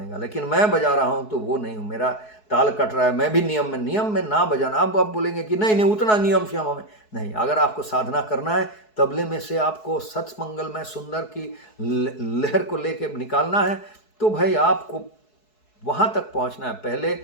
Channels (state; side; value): late; right; 4.7 ms